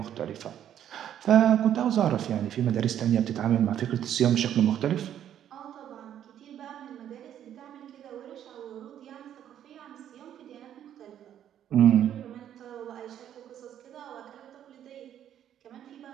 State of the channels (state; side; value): quieter; left; 10.4 dB